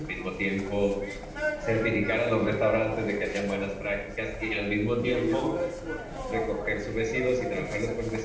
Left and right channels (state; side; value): identical; both; correlation 1.00